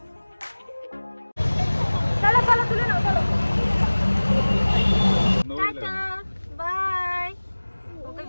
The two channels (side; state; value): both; inverted; correlation -1.00